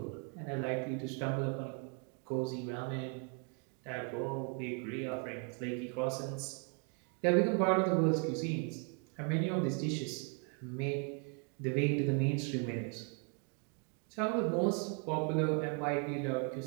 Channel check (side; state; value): left; quieter; 38.8 dB